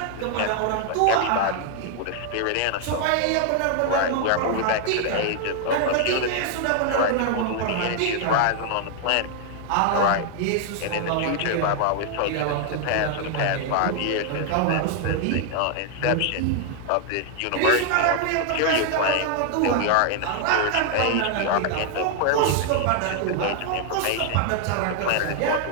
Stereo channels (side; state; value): both; different; correlation 0.00